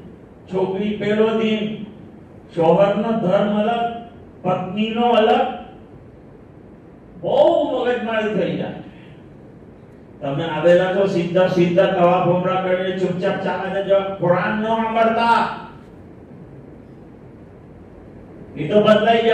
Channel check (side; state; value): both; identical; correlation 1.00